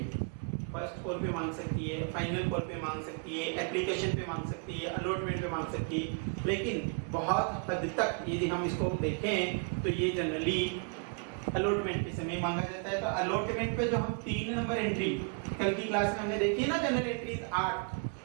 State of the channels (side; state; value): left; quieter; 38.9 dB